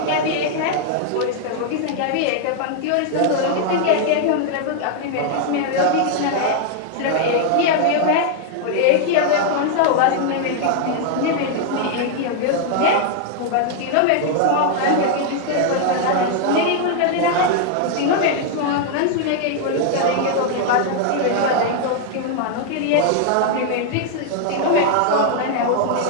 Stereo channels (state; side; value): different; both; correlation 0.00